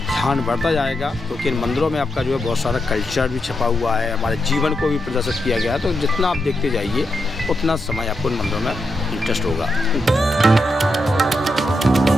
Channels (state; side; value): normal; both; correlation 0.85